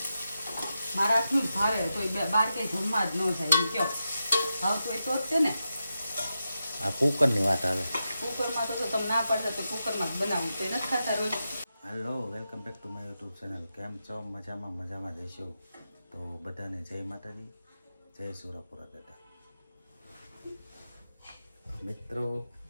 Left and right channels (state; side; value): inverted; both; correlation -0.89